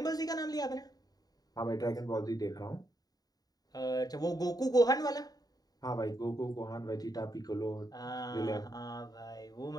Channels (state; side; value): late; right; 0.18 ms